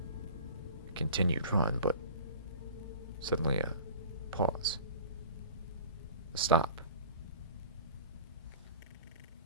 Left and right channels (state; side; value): inverted; both; correlation -0.42